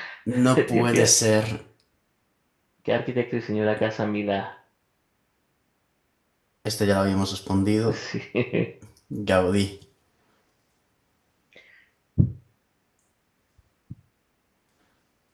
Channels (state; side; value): identical; both; correlation 1.00